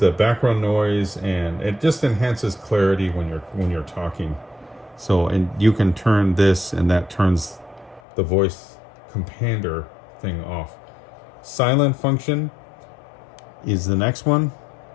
background noise, and it just enhances clarity when you're talking. So, and you can turn this, and that turns the voice compander thing off. Silent function is the next one.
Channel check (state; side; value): drops out; right; at 8.0 s